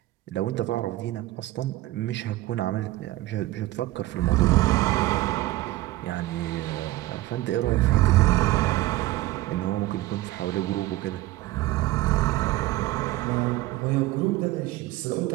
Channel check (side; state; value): left; quieter; 17.4 dB